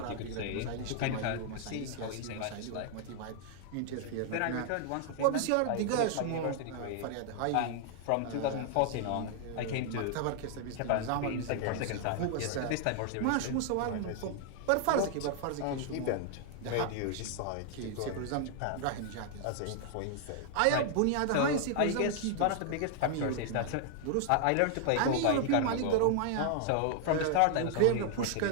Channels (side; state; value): both; different; correlation 0.00